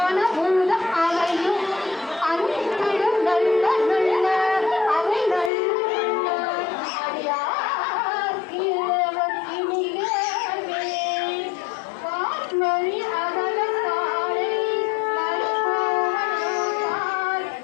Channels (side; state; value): right; drops out; at 5.5 s